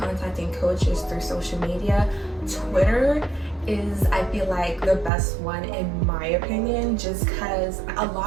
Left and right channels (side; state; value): left; drops out; at 5.1 s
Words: coaches through social media. Twitter is, I feel like, the best one in my opinion, just because a